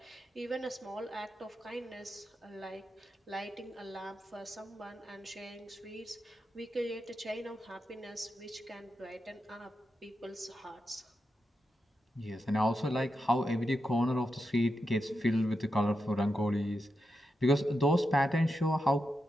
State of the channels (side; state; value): both; normal; correlation 0.87